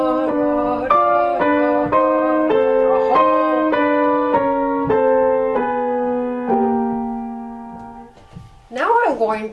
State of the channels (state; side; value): identical; both; correlation 1.00